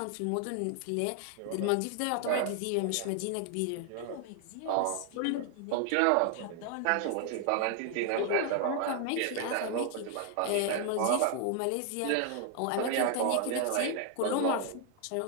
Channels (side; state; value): both; different; correlation 0.00